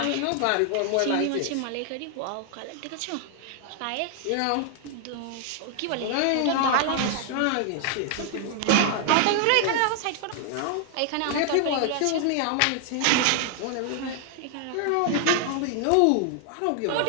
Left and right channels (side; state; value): both; different; correlation 0.00